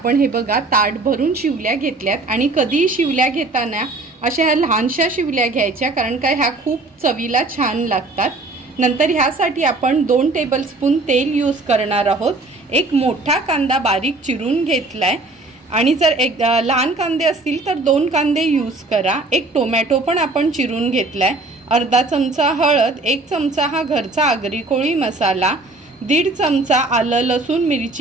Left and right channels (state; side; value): quieter; left; 3.1 dB